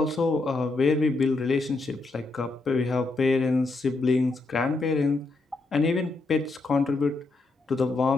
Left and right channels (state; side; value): quieter; right; 3.4 dB